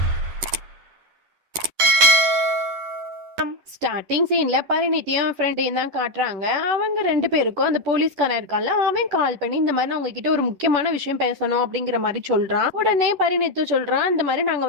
ஸ்டார்டிங் சீன்ல பரிணித்தியும் ஃப்ரெண்டையும் தான் காட்டுறாங்க. அவங்க ரெண்டு பேருக்கும் அந்த போலீஸ்காரன் இருக்கான்ல, அவன் கால் பண்ணி இந்த மாதிரி நான் உங்ககிட்ட ஒரு முக்கியமான விஷயம் பேசணும் அப்படிங்கிற மாதிரி சொல்றான். உடனே பரிணித்து சொல்றான், இந்த மாதிரி நாங்க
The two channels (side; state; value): left; late; 11 ms